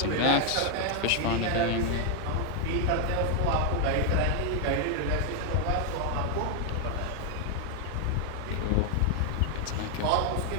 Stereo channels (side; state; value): both; different; correlation 0.00